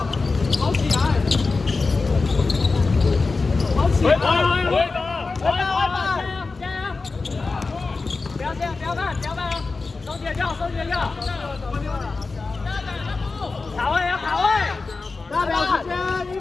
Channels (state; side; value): quieter; right; 4.0 dB